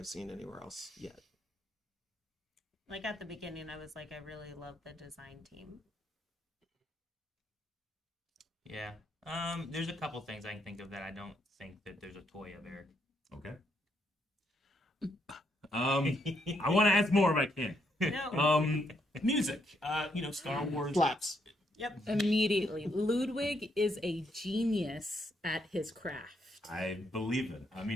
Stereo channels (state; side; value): normal; both; correlation 0.75